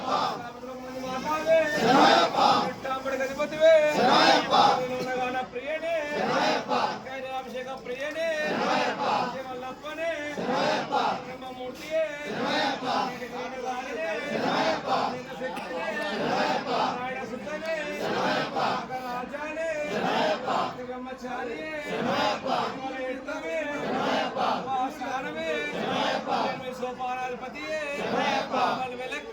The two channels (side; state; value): both; identical; correlation 1.00